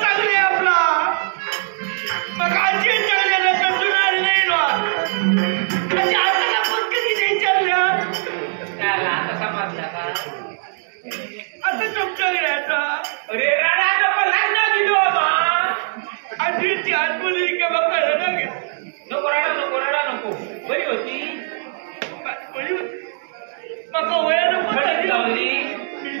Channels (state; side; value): silent; left; digital silence